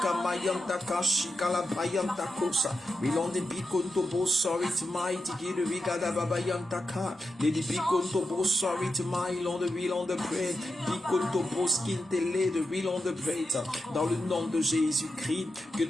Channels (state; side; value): normal; both; correlation 0.88